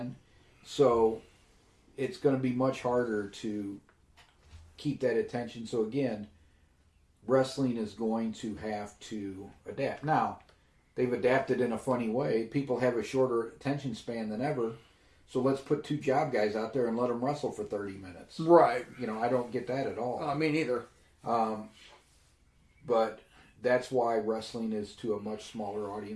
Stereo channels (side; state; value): both; identical; correlation 1.00